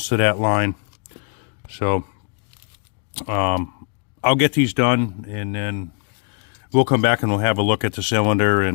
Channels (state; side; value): quieter; right; 39.5 dB